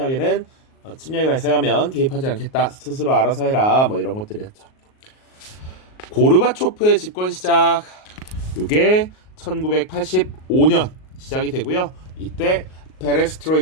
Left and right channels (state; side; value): late; right; 38 ms